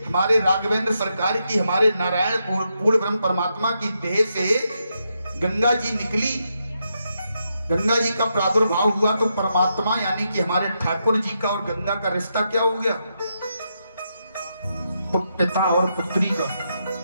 हमारे राघवेंद्र सरकार की, हमारे नारायण पूर्ण ब्रह्म परमात्मा की देह से गंगा जी निकली, गंगा जी का प्रादुर्भाव हुआ, तो परमात्मा यानी कि हमारे ठाकुर जी का और गंगा का रिश्ता क्या हो गया? पिता और पुत्री का।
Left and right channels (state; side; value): inverted; both; correlation -0.82